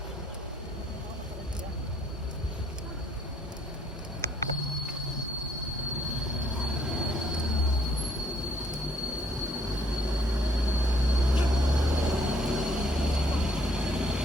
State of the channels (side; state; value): both; normal; correlation 0.66